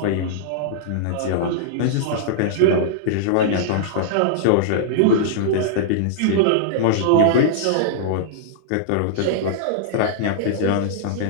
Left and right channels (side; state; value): both; different; correlation -0.02